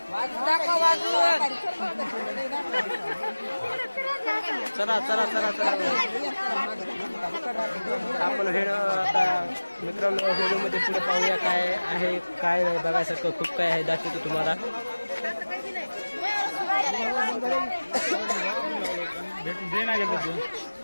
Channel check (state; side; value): inverted; both; correlation -1.00